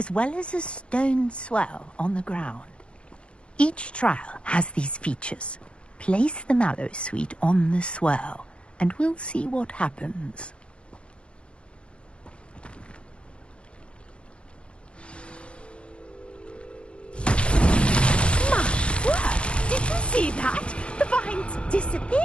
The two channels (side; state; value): right; late; 0.058 ms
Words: well as a stone swell on the ground. Each trial has these features. Place the Mallowsweet on the swell, and we'll see what happens. My word! Did you see that? The vines